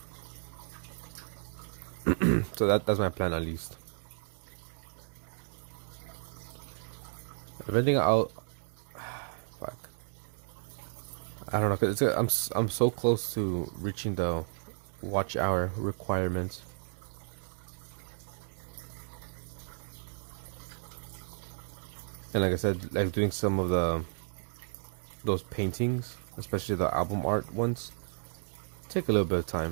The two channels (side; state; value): left; silent; digital silence